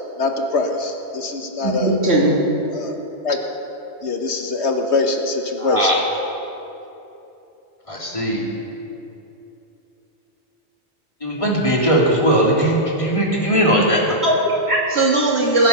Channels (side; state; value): both; normal; correlation -0.09